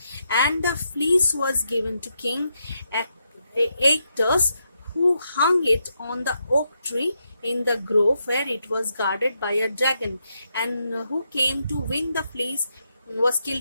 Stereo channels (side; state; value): both; inverted; correlation -0.81